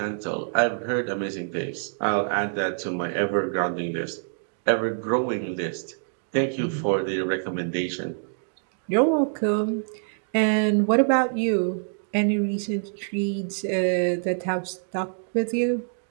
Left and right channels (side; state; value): left; silent; digital silence